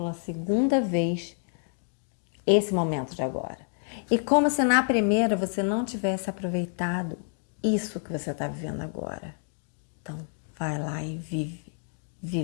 segunda vez esse momento de agora. E como se na primeira você não tivesse aproveitado isso que você está vivendo agora. Então, vai lá e vive.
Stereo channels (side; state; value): right; silent; 59 dB below the other